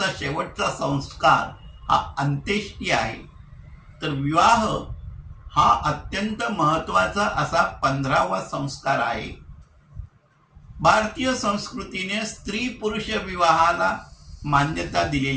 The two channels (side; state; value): both; identical; correlation 1.00